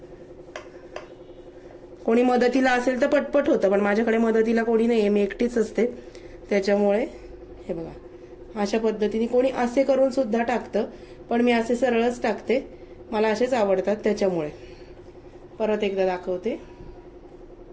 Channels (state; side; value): identical; both; correlation 1.00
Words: कोणी मदतीला असेल तर पटपट होतं, पण माझ्याकडे मदतीला कोणी नाहीये, मी एकटीच असते, त्याच्यामुळे हे बघा अशा पद्धतीने. कोणी असे करून सुद्धा टाकतं, पण मी असे सरळच टाकते, मला असेच आवडतात त्याच्यामुळे. परत एकदा दाखवते.